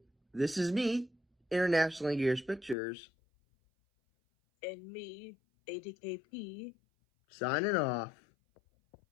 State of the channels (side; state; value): right; drops out; at 2.8 s